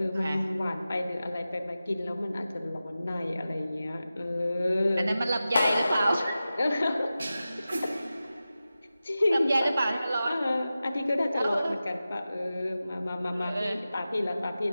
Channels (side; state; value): both; inverted; correlation -0.94